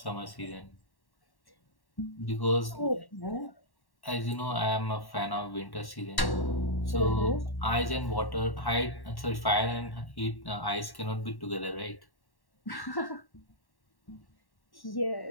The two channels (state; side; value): late; right; 1.1 ms